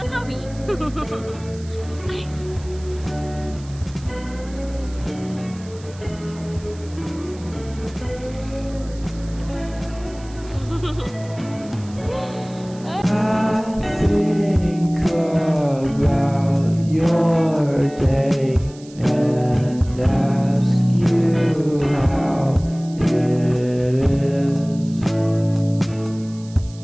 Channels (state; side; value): noise; right; hiss, 22 dB below the sound